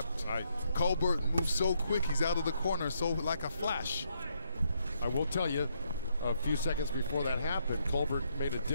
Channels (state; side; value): inverted; both; correlation -0.75